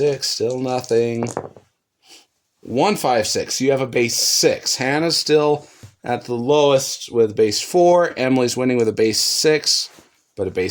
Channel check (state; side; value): identical; both; correlation 1.00